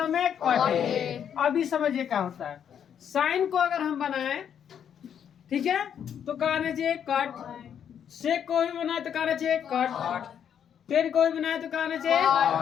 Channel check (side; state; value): right; quieter; 8.6 dB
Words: में? Cot A. अभी समझिए क्या होता है। साइन को अगर हम बनाए, ठीक है, तो कहना चाहिए कट। सेक को भी बनाए तो कहना चाहिए कट। टेन को भी बनाए तो कहना चाहिए